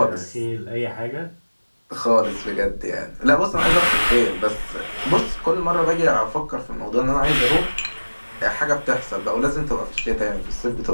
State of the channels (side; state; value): both; inverted; correlation -1.00